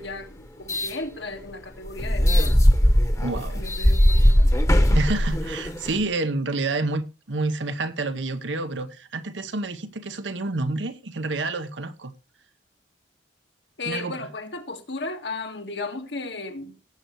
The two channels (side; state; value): both; normal; correlation 0.83